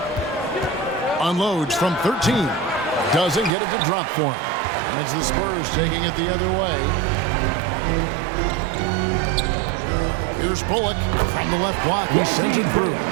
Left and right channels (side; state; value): left; drops out; at 3.5 s